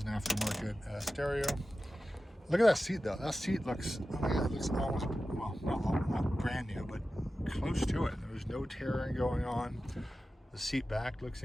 an aftermarket stereo. Look at that seat though. That seat looks, oh my God, it looks almost, well, not brand new, but close to it. There's no tearing going on. The seat back looks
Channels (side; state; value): both; normal; correlation 0.94